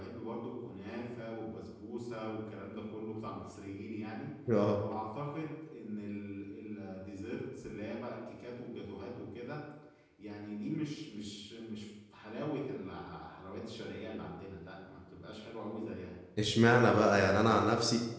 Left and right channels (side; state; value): both; identical; correlation 1.00